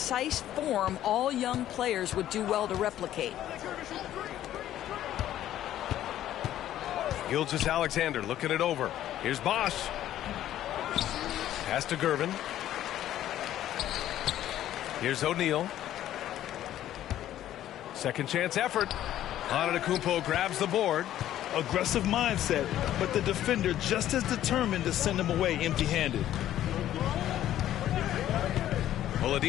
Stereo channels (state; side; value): quieter; right; 12.4 dB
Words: form all young players would do well to replicate. Gilgeous-Alexander looking it over. Here's Bosch. Pass to Gervin. Here's O'Neal. Second chance effort. Antetokounmpo grabs the board. Aggressive mindset, but the defender just as determined to send him away empty-handed.